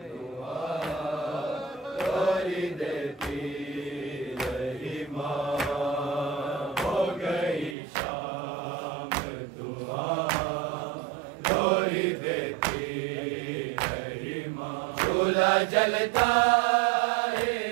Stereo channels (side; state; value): left; drops out; at 7.8 s